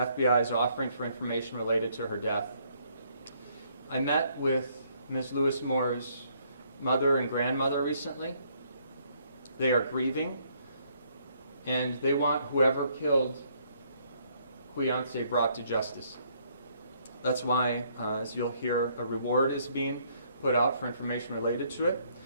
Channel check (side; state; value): both; inverted; correlation -0.68